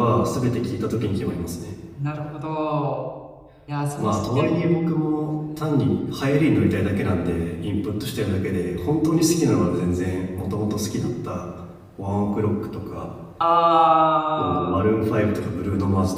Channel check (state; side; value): identical; both; correlation 1.00